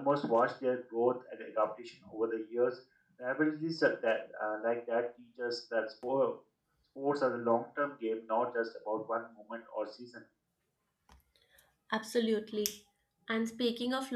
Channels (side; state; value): both; identical; correlation 1.00